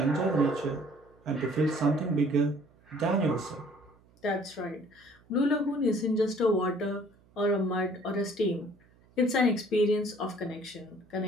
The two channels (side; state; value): right; noise; hum, 30 dB below the sound